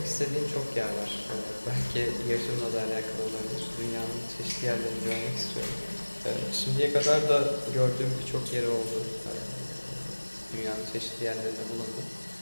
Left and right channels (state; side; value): inverted; both; correlation -1.00